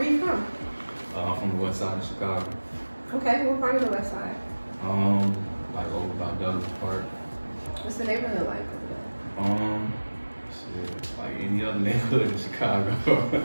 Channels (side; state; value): both; inverted; correlation -1.00